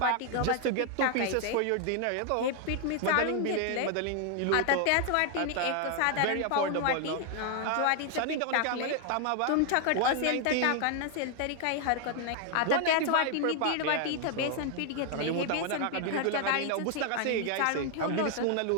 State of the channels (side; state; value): both; different; correlation 0.00